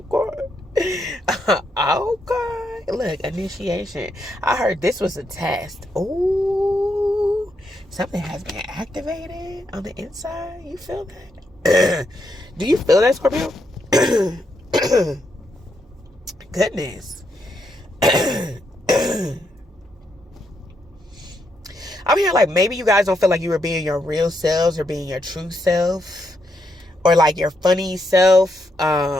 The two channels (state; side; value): normal; both; correlation 0.80